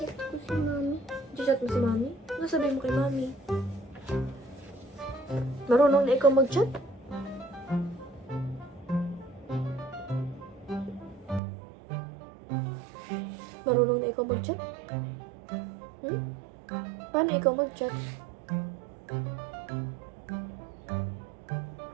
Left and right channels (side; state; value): left; drops out; at 11.4 s